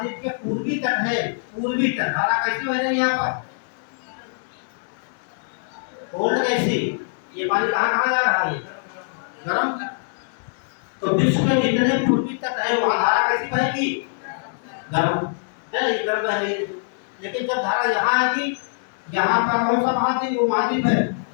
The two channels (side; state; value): right; silent; digital silence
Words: के पूर्वी तट है, पूर्वी तट, धारा कैसी बह रही है यहाँ पर, कोल्ड कैसी, ये पानी कहाँ कहाँ जा रहा है, गर्म, तो विश्व के जितने पूर्वी तट है वहाँ धारा कैसी बहेगी, गर्म है, ये गर्म बह रही है, लेकिन जब धारा यहाँ आएगी, यहाँ का कौन सा महाद्वीप, वो महाद्वीप है,